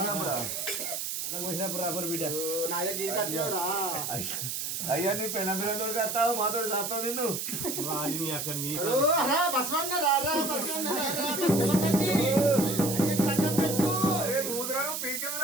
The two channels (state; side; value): noise; right; hiss, 3 dB below the sound